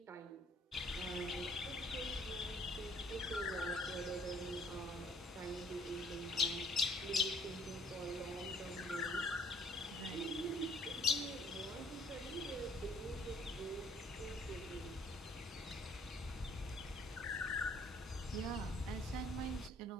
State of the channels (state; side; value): normal; both; correlation 0.60